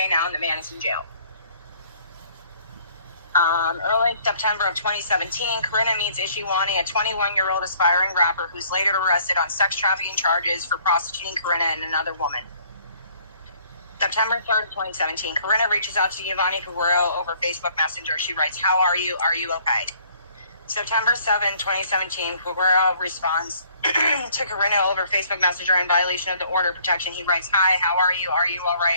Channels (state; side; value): inverted; both; correlation -0.60